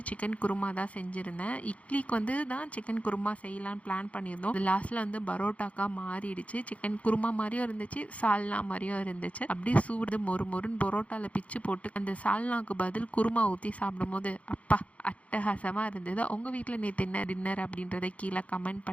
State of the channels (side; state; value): right; late; 0.065 ms